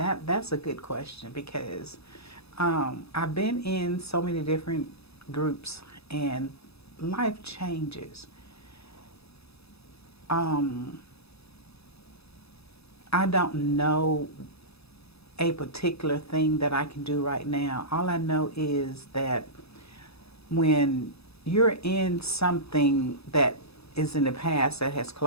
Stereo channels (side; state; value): right; late; 0.78 ms